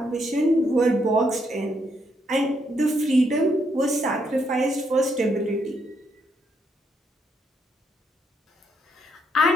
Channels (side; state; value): both; normal; correlation 0.75